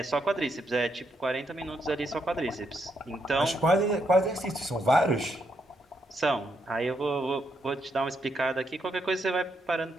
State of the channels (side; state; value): both; normal; correlation 0.78